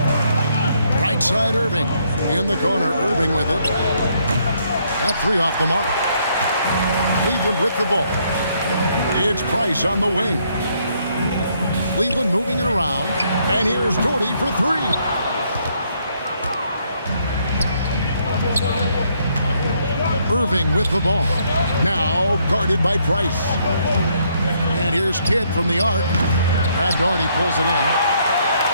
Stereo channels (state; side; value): inverted; both; correlation -0.71